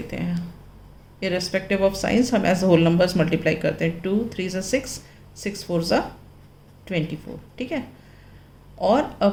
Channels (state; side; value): identical; both; correlation 1.00